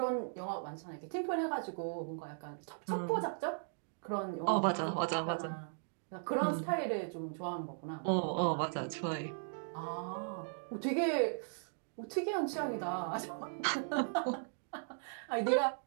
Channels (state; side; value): silent; left; digital silence